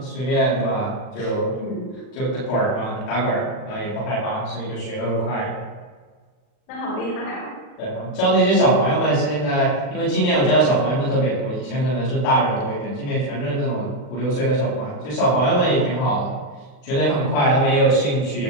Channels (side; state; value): right; late; 39 ms